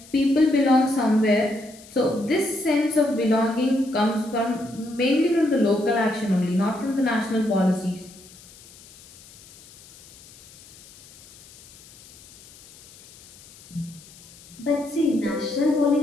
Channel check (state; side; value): noise; left; hiss, 23 dB below the sound